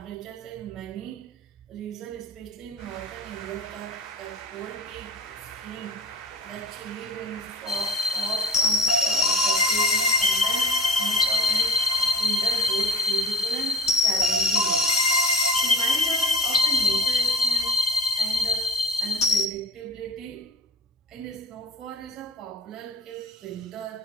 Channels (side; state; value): both; normal; correlation 0.39